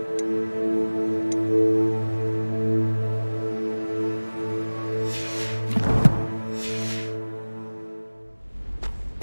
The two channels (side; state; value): both; inverted; correlation -1.00